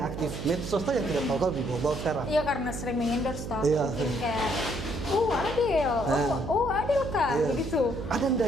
aktif medsos tuh yang tidak tahu kau di bawah sekarang? Iya, karena sering mengendorse toh. Iya. Mungkin kayak Adel Kak, begitu. Ada ndak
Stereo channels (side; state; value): right; noise; hum, 7 dB below the sound